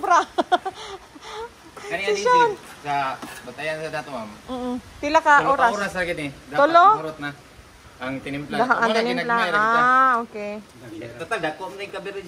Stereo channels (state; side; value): identical; both; correlation 1.00